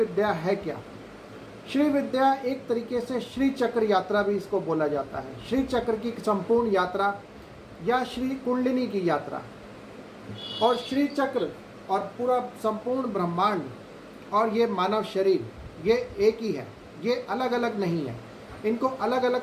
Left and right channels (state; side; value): identical; both; correlation 1.00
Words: है क्या। श्री विद्या एक तरीके से श्री चक्र यात्रा भी इसको बोला जाता है। श्री चक्र की संपूर्ण यात्रा या श्री कुंडलिनी की यात्रा। और श्री चक्र और पूरा संपूर्ण ब्रह्मांड और ये मानव शरीर, ये एक ही है, ये अलग अलग नहीं है। इनको अलग अलग